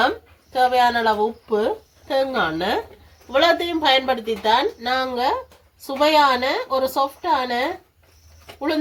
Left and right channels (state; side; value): identical; both; correlation 1.00